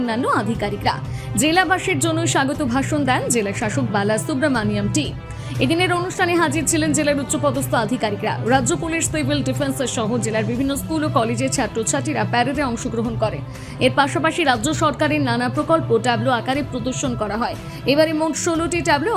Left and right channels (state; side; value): identical; both; correlation 1.00